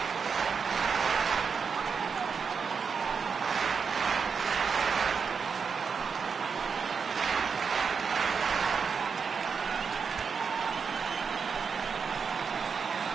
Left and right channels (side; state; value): left; quieter; 5.8 dB